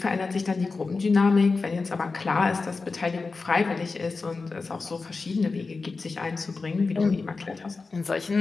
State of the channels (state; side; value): quieter; right; 4.1 dB